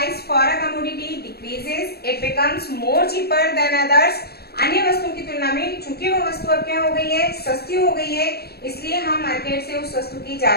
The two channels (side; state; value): right; late; 0.46 ms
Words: for a commodity decreases, it becomes more cheaper than others. अन्य वस्तुओं की तुलना में चूंकि वो वस्तु अब क्या हो गई है, सस्ती हो गई है, इसलिए हम मार्केट से उस वस्तु की